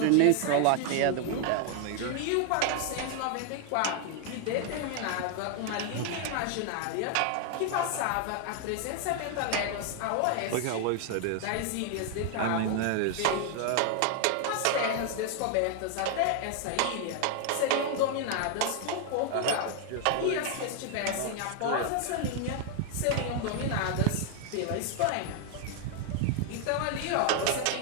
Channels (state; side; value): different; both; correlation 0.00